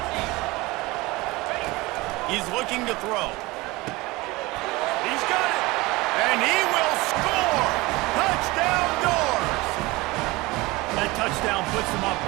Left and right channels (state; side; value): quieter; left; 21.9 dB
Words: He's looking to throw. He's got it. And he will score. Touchdown Doors. That touchdown puts them up